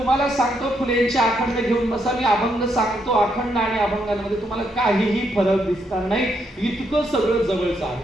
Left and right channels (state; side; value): normal; both; correlation 0.77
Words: सांगतो फुलेंचे अखंड घेऊन बसा. मी अभंग सांगतो. अखंड आणि अभंगांमध्ये तुम्हाला काहीही फरक दिसणार नाही. इतकं सगळं जवळचं